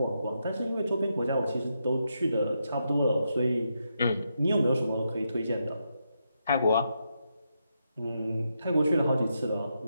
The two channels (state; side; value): inverted; both; correlation -0.83